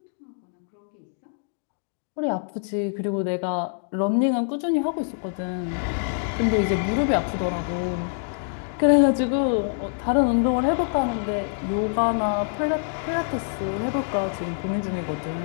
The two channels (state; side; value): silent; right; digital silence